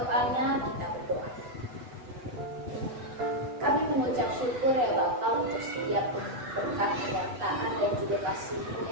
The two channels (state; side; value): late; left; 8.1 ms